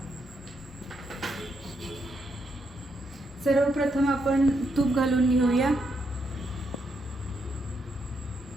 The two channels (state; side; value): normal; both; correlation 0.79